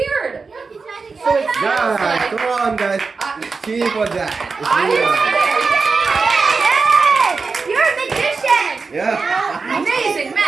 So it's Guys, come on, guys. Cheer for that. Yay! You're a magician! Yeah. Amazing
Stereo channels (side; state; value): left; quieter; 4.5 dB